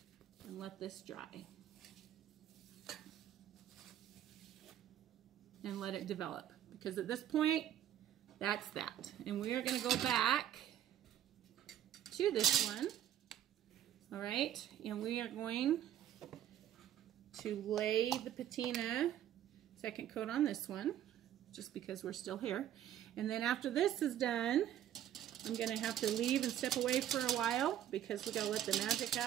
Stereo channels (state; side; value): quieter; left; 11.2 dB